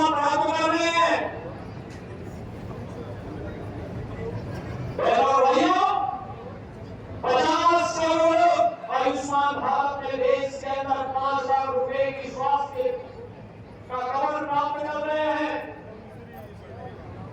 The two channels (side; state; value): both; identical; correlation 1.00